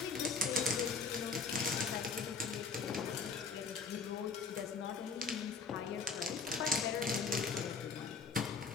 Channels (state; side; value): quieter; right; 4.8 dB